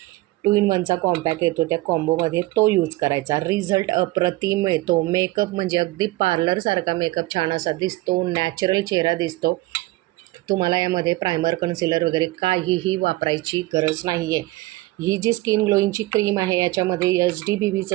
2 in 1चा कॉम्पॅक्ट येतो, त्या कॉम्बोमध्ये तो यूज करायचा. रिझल्ट अप्रतिम मिळतो. मेकअप म्हणजे अगदी पार्लरसारखा मेकअप छान असा दिसतो, नॅचरल चेहरा दिसतो. तुम्हाला यामध्ये प्रायमर, कन्सिलर वगैरे काहीही वापरायची गरज नाही आहे. ही जी स्किन ग्लोईंगची क्रीम आहे याच्यामध्ये HD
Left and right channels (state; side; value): quieter; left; 19.2 dB